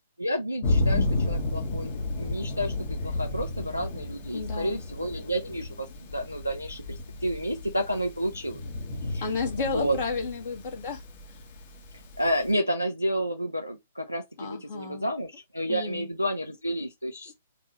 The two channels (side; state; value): both; inverted; correlation -0.78